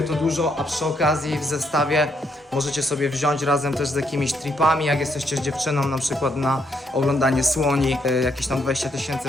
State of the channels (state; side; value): normal; both; correlation 0.75